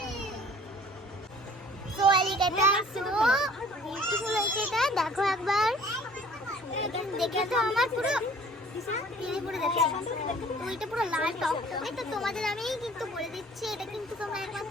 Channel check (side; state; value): both; normal; correlation 0.52